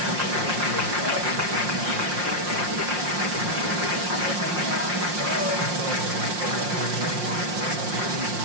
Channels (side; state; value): left; late; 5.6 ms